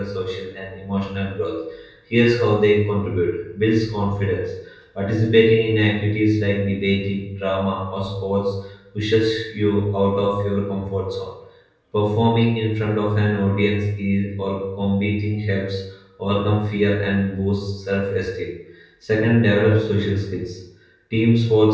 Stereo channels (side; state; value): both; identical; correlation 1.00